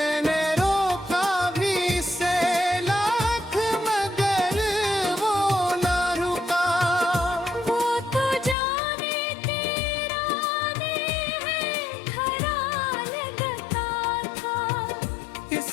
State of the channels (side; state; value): right; drops out; at 8.6 s